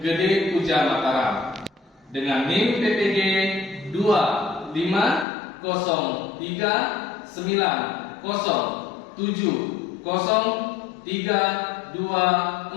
Gede Puja Mataram dengan NIM PPG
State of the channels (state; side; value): drops out; right; at 5.2 s